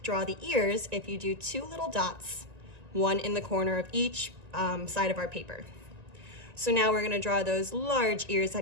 the ears if you do two little dots, one in the corner of each side of our paper. So now we're gonna draw those large ears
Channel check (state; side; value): late; left; 1.9 ms